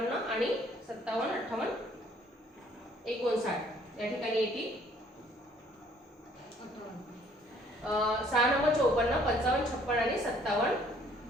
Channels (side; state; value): both; normal; correlation 0.60